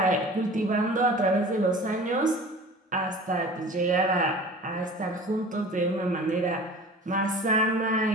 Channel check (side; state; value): both; normal; correlation 0.41